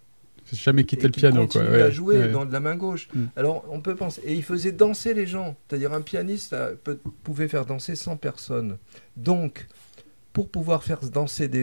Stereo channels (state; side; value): inverted; both; correlation -1.00